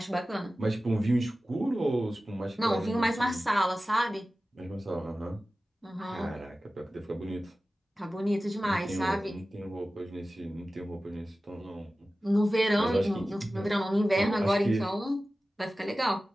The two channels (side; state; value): both; normal; correlation 0.96